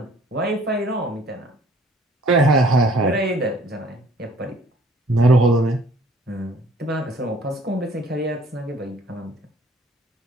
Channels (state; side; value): normal; both; correlation 0.57